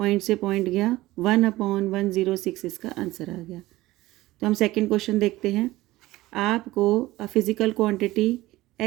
से पॉइंट गया 1/106, इसका आंसर आ गया। तो हम सेकेंड क्वेश्चन देखते हैं। आपको फिजिकल क्वांटिटी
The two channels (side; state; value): left; quieter; 17.8 dB